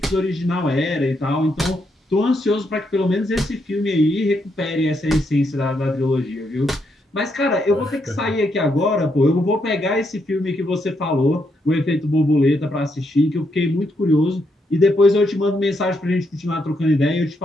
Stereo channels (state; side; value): normal; both; correlation 0.78